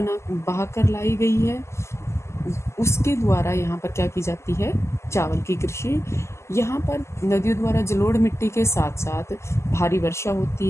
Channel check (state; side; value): late; right; 0.13 ms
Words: लाई गई है उसके द्वारा यहाँ पर क्या की जाती है? चावल की कृषि। यहाँ पर नदियों द्वारा जलोढ़ मिट्टी के साथ साथ भारी वर्षा